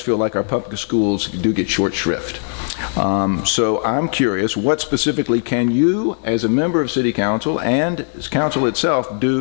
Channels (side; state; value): right; silent; 64 dB below the other